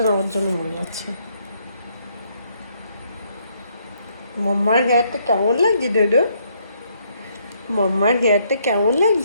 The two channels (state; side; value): inverted; both; correlation -0.71